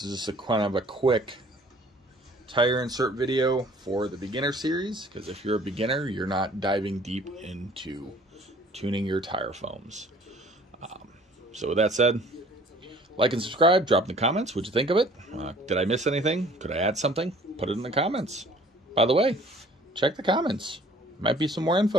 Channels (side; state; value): both; normal; correlation 0.53